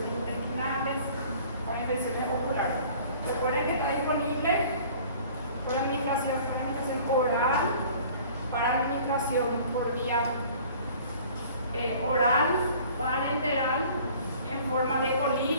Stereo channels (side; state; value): both; inverted; correlation -0.50